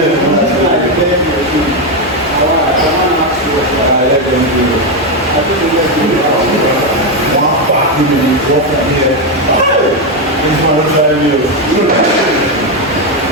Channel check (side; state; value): both; normal; correlation 0.06